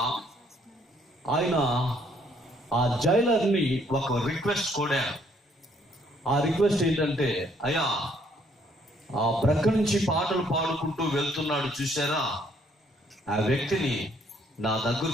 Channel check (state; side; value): normal; both; correlation 0.66